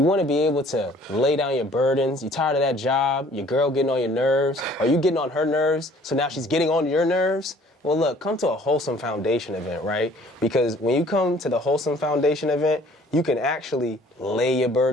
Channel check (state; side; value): normal; both; correlation 0.55